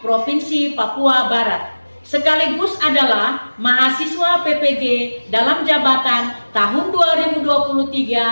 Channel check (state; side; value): inverted; both; correlation -1.00